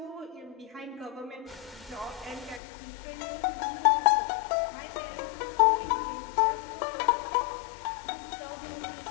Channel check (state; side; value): drops out; right; at 2.6 s